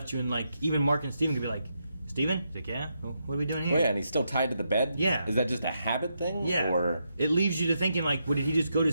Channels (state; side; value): inverted; both; correlation -0.82